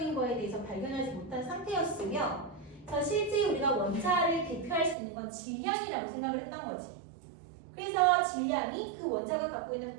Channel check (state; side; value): drops out; left; at 5.0 s